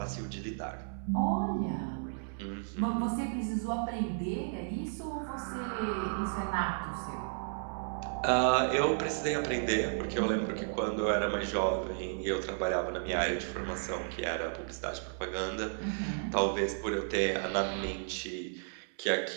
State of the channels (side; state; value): left; silent; 55 dB below the other